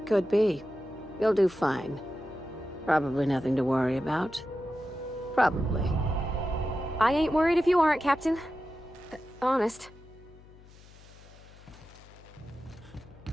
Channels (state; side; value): noise; left; hum, 22 dB below the sound